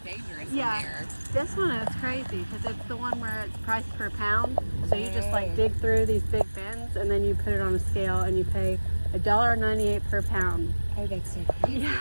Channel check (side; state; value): both; inverted; correlation -1.00